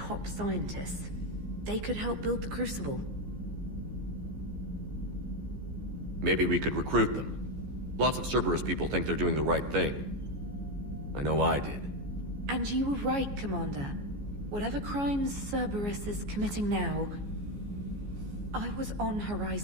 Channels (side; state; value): left; late; 14 ms